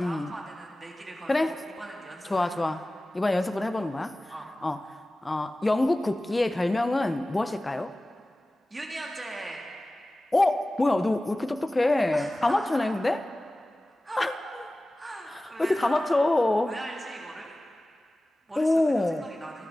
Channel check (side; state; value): both; normal; correlation 0.97